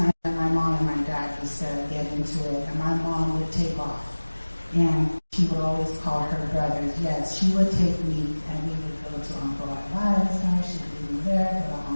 that my mom and my dad used to get into it, and my mom would take off, and she would always call her brothers. Yes, she would take me, and we would go to Uncle Eli's house. She'd leave me there, go to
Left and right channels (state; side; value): inverted; both; correlation -1.00